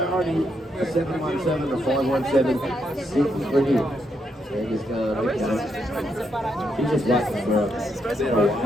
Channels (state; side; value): normal; both; correlation 0.79